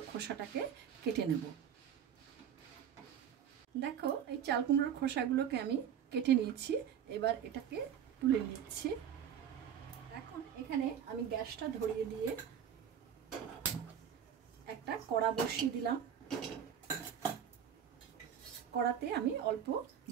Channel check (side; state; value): left; quieter; 8.7 dB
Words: খোসাটাকে কেটে নেব। দেখো এই চাল কুমড়োর খোসাগুলোকে আমি কেটে নিয়েছি। এবার এটাকে তুলে নিচ্ছি। এখন এখানে আমি গ্যাসটা ধরিয়ে দিয়ে একটা কড়া বসিয়ে দিলাম। কড়াতে আমি অল্প